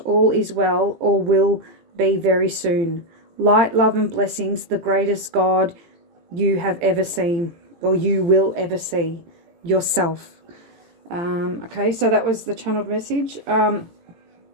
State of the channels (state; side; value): late; left; 18 ms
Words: all is well, or will be very soon. Light, love, and blessings, the greatest God you have ever seen, or you will ever see, yourself. Okay, so that was the channeled message. I